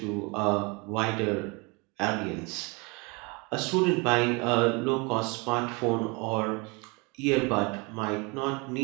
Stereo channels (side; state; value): left; quieter; 28.9 dB